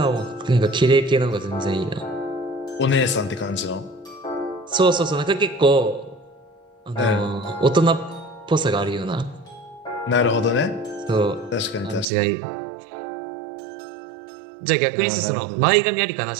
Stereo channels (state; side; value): drops out; left; at 12.1 s